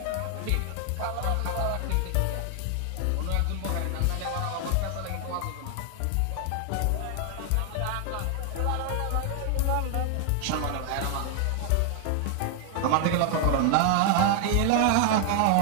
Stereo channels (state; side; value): different; both; correlation 0.00